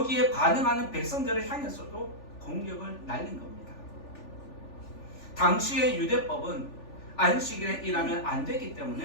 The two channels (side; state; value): right; late; 3.4 ms